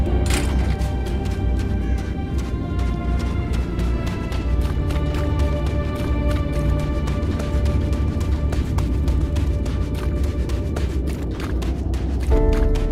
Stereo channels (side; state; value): both; identical; correlation 1.00